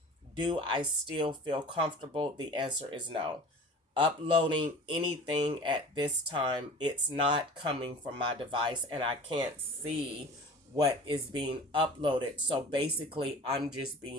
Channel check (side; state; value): both; normal; correlation 0.41